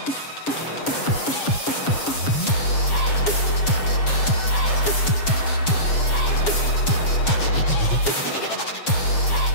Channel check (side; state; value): right; late; 7.3 ms